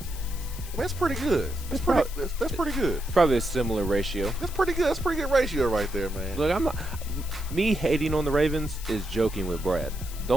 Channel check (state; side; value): noise; left; hiss, 15 dB below the sound